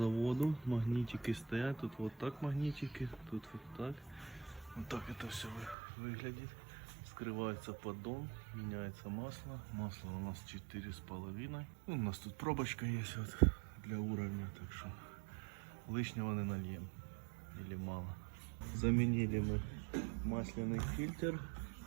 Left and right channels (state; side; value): drops out; left; at 5.8 s